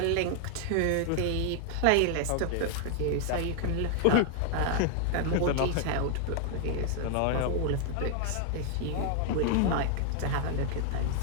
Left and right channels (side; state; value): both; different; correlation 0.00